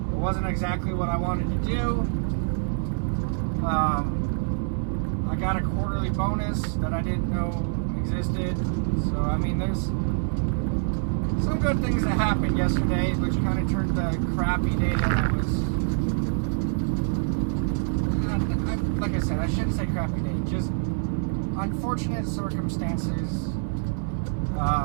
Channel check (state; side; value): silent; left; 61 dB below the other